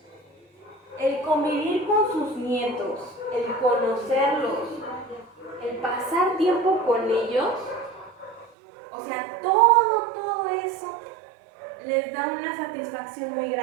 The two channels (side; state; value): left; drops out; at 8.5 s